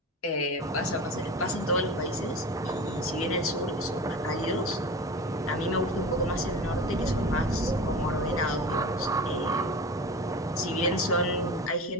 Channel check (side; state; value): both; normal; correlation 0.32